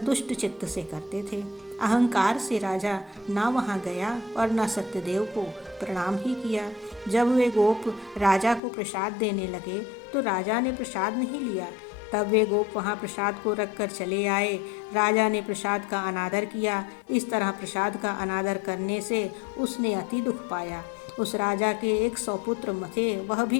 चित्त से करते थे। अहंकार से राजा ना वहाँ गया और न सत्यदेव को प्रणाम ही किया। जब वे गोप राजा को प्रसाद देने लगे तो राजा ने प्रसाद नहीं लिया। तब वे गोप वहाँ प्रसाद को रखकर चले आए। राजा ने प्रसाद का अनादर किया। इस तरह प्रसाद का अनादर करने से उसने अति दुख पाया। उस राजा के 100 पुत्र थे, वह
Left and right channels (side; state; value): right; drops out; at 8.6 s